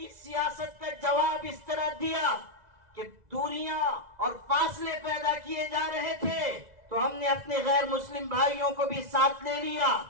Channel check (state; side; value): late; left; 2.0 ms